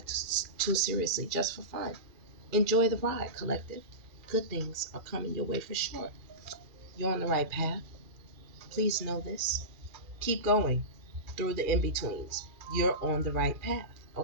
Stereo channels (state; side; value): late; left; 2.4 ms